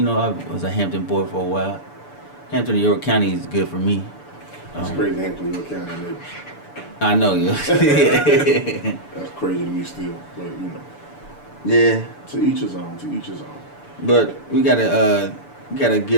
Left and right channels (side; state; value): right; late; 6.9 ms